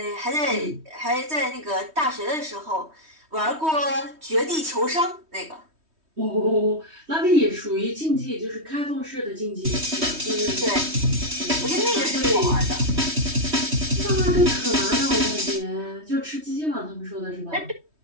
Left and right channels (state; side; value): late; left; 3.2 ms